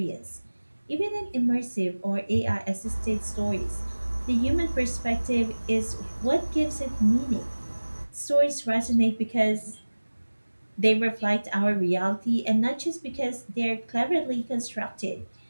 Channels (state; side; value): inverted; both; correlation -1.00